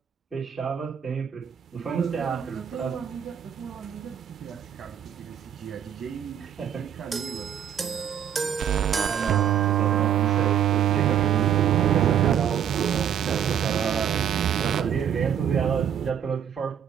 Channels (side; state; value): left; quieter; 8.9 dB